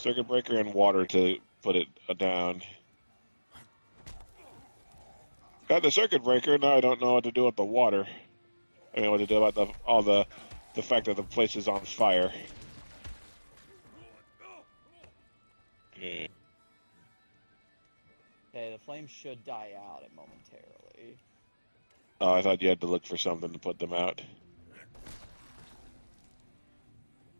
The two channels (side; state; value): both; inverted; correlation -1.00